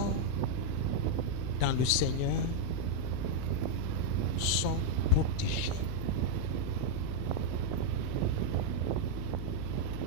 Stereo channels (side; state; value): both; different; correlation -0.01